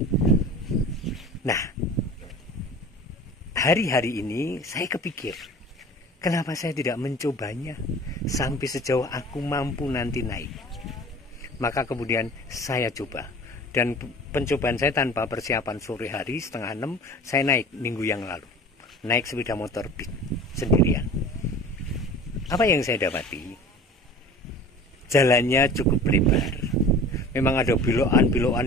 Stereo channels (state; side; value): normal; both; correlation 0.41